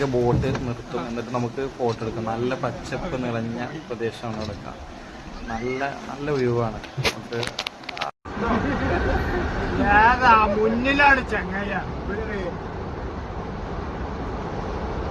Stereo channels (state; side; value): identical; both; correlation 1.00